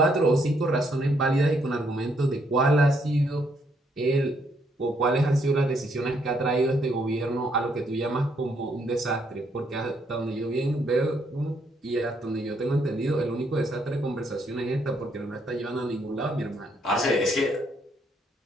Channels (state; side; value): normal; both; correlation 0.72